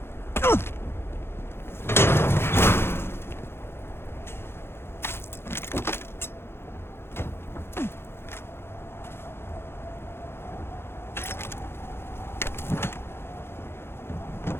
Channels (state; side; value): late; right; 0.11 ms